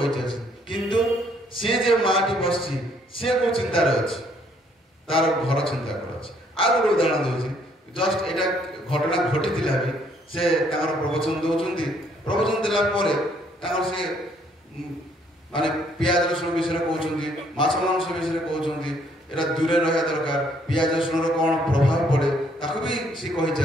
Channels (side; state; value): both; normal; correlation 0.66